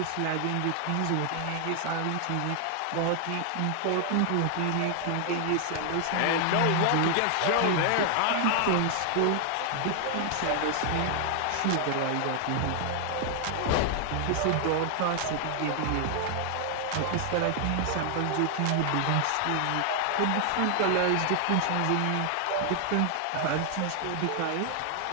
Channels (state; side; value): different; both; correlation 0.00